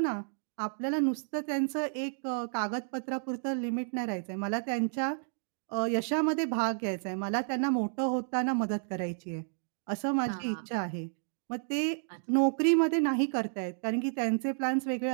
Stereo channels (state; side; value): silent; left; digital silence